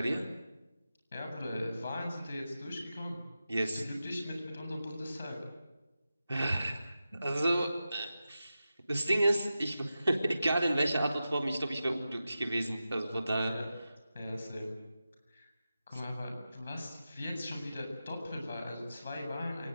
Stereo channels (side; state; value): both; inverted; correlation -0.92